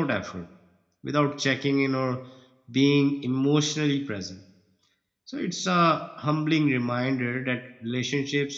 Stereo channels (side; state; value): both; identical; correlation 1.00